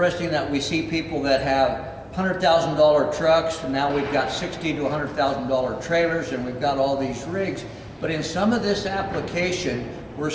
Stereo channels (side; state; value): both; identical; correlation 1.00